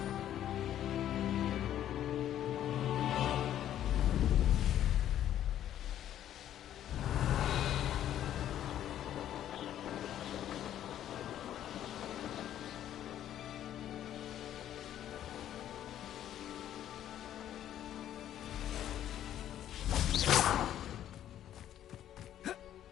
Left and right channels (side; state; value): right; quieter; 11.3 dB